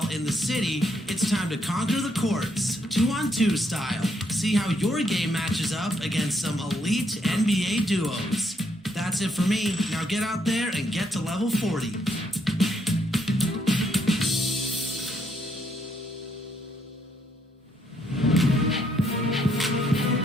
in the city, it's time to conquer the courts, 2-on-2 style. See how your game matches up against some elite NBA duos. That's it for me. Now get out there and get to level 40.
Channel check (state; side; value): normal; both; correlation 0.74